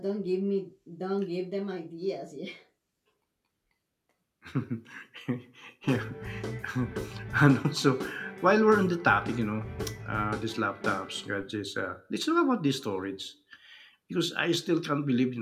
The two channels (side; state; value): both; identical; correlation 1.00